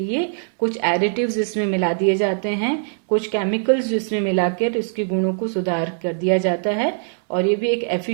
कुछ एडिटिव्स इसमें मिला दिए जाते हैं, कुछ केमिकल्स इसमें मिलाकर इसके गुणों को सुधार कर दिया जाता है और ये भी एक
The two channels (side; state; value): left; silent; 65 dB below the other